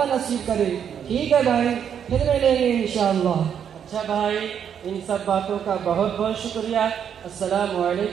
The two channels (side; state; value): left; quieter; 8.3 dB